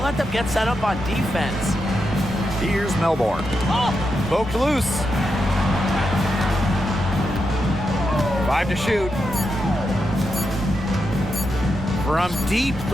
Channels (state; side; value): normal; both; correlation 0.86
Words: let them get set up on defense. Here's Melbourne. Poked loose. 5 to shoot. From deep